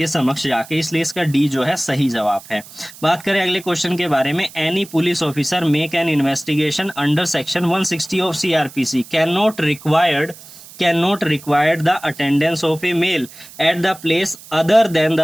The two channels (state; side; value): noise; right; hiss, 19 dB below the sound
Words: समक्ष जाके, इसलिए इसका डी जो है सही जवाब है। बात करें अगले क्वेश्चन के बारे में, any police officer make an investigation under section 160 of CrPC can not require the attendance of a male at the place other than